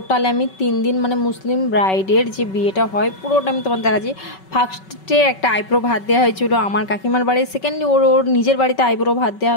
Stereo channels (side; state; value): right; late; 5.3 ms